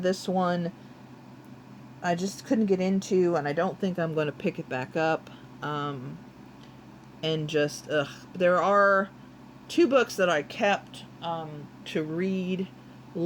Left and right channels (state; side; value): identical; both; correlation 1.00